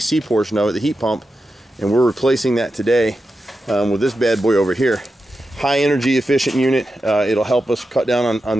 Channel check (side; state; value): both; normal; correlation 0.90